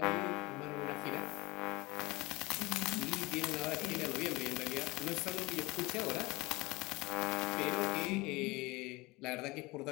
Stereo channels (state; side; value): quieter; right; 22.6 dB